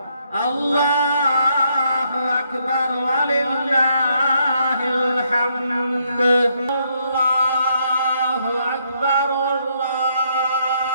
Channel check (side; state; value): both; inverted; correlation -0.74